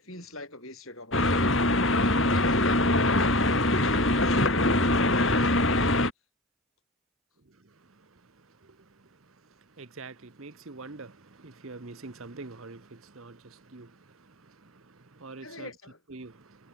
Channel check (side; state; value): both; normal; correlation 0.34